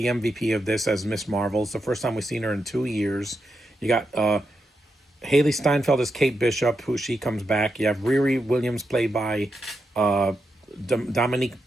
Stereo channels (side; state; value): both; normal; correlation 0.85